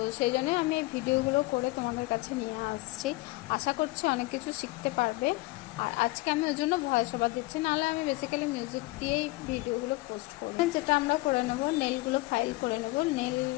সেই জন্য আমি এই ভিডিওগুলো করে তোমাদের কাছে নিয়ে আসছি। আশা করছি অনেক কিছু শিখতে পারবে। আর আজকে আমি ওই জন্য ভয়েস ওভার দিচ্ছি, নাহলে আমি বেসিক্যালি মিউজিক দিয়েই ভিডিওগুলো পোস্ট করব। যেটা আমরা করে নেব, নেলগুলো ফাইল করে নেব। নেল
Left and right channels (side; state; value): right; quieter; 21.7 dB